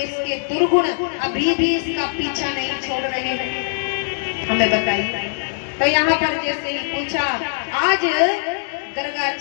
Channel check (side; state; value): right; silent; digital silence